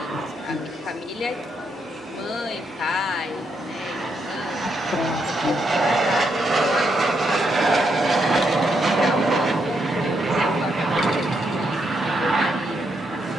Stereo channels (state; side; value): normal; both; correlation 0.79